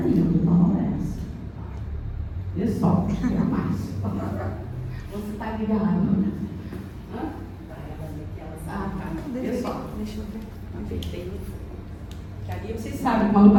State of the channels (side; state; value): both; identical; correlation 1.00